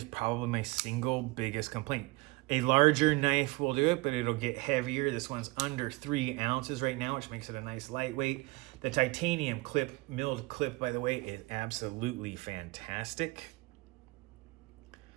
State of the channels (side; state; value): left; quieter; 23.2 dB